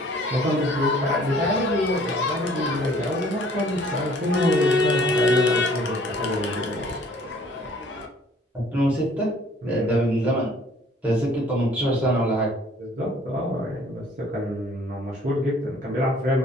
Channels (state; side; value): normal; both; correlation 0.56